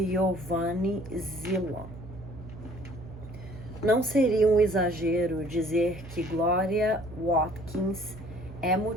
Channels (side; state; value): right; noise; hum, 14 dB below the sound